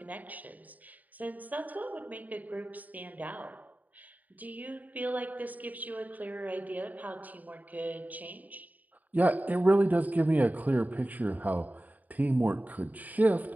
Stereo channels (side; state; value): left; late; 0.079 ms